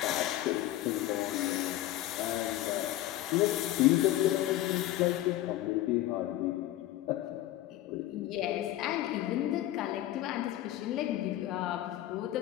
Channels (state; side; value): quieter; right; 14.6 dB